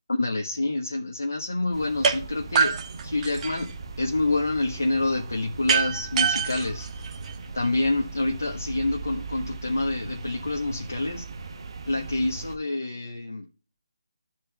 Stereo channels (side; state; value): both; inverted; correlation -0.78